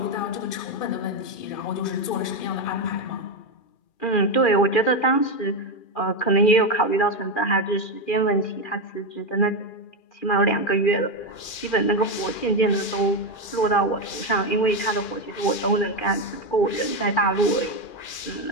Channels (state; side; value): late; right; 2.4 ms